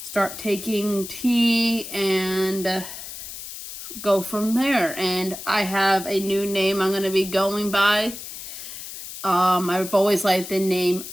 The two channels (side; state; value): left; noise; hiss, 11 dB below the sound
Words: start taking tea, and go from there. And I have a new name I'm going to be going by. I've always liked the name